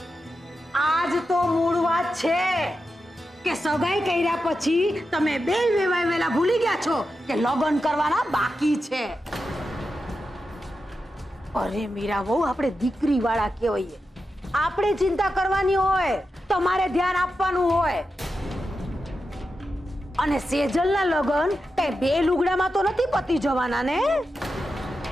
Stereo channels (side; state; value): both; normal; correlation 0.89